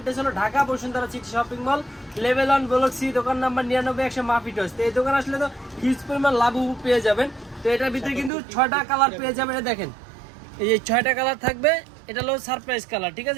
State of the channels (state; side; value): drops out; left; at 8.3 s